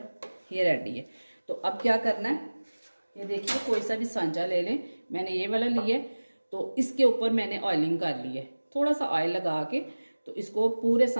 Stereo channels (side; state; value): both; inverted; correlation -1.00